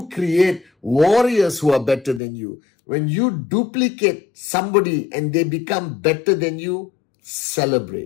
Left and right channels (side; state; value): right; drops out; at 2.2 s